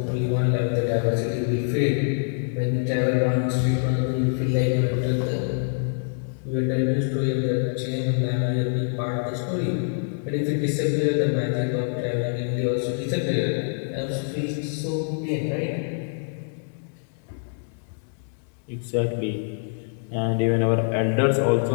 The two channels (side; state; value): right; silent; digital silence